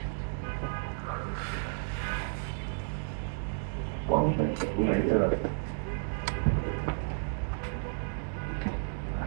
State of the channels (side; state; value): left; silent; digital silence